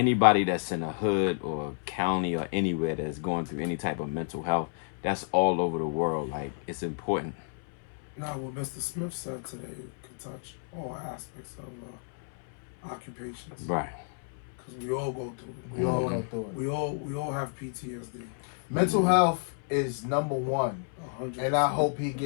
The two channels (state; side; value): silent; right; 57 dB below the other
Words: that's in a hood or a county or anywhere that's going through any type of mental health. That's all over the world. Like, it's important. Now, what Mr. Smith said today could touch all aspects of occupations. Right. Because we all go through it. We all go through it. We all have PTSD. Mental health is number one. 100%. And I hope he